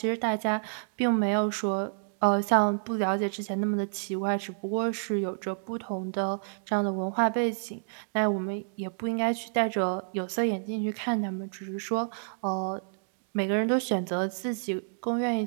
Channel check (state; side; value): silent; left; digital silence